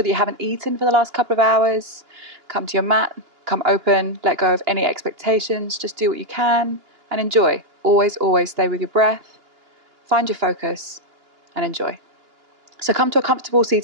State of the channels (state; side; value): late; left; 2.9 ms